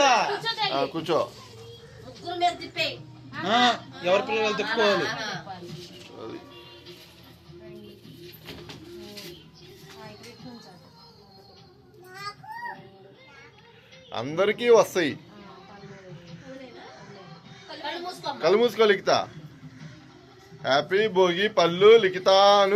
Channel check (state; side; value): identical; both; correlation 1.00